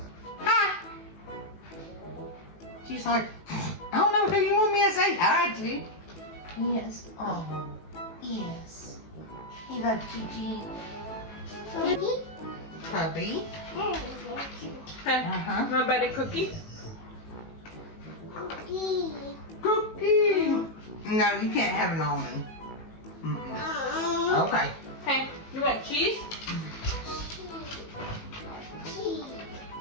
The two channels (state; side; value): late; right; 18 ms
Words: Hi. She's like, I don't know who you want me to say hi to. Yes. Oh, yes. You love Gigi. Puppy. Uh-huh. My buddy Cookie. Cookie. No, you can't have an almond. Okay. Hey, you want cheese?